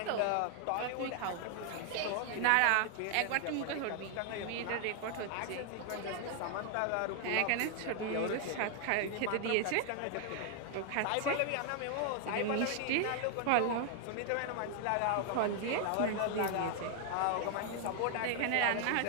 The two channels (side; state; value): both; different; correlation 0.00